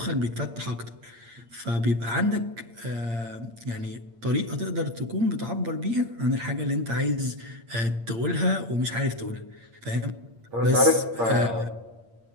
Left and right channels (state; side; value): late; left; 8.7 ms